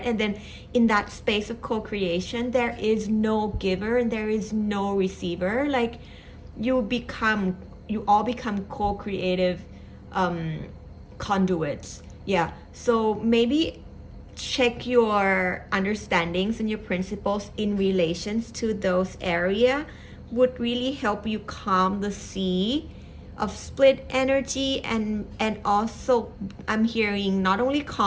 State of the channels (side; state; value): both; identical; correlation 1.00